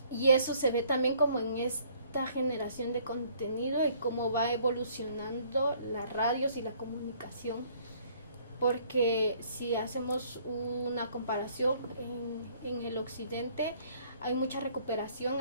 Y eso se ve también como en esta generación de contenido y cómo va evolucionando las radios y la comunicación. Porque si hacemos una comparación en el occidente, hay mucha recuperación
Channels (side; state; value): both; inverted; correlation -0.61